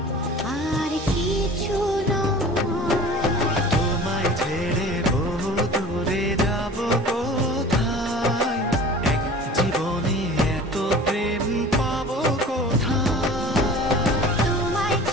আর কিছু নয়। তোমায় ছেড়ে বহু দূরে যাব কোথায়, এক জীবনে এত প্রেম পাবো কোথায়। তোমায়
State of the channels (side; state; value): both; normal; correlation 0.42